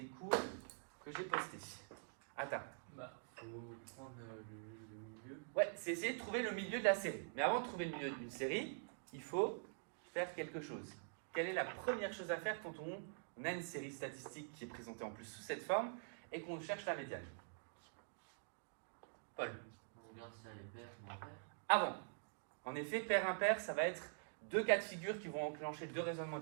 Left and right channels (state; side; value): silent; left; digital silence